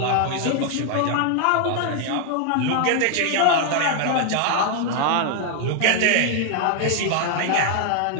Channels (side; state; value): both; different; correlation 0.00